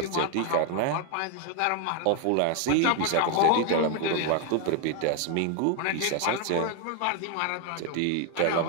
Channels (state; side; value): different; both; correlation 0.01